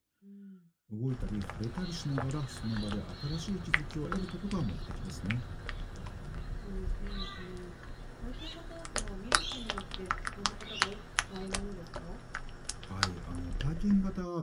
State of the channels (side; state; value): both; identical; correlation 1.00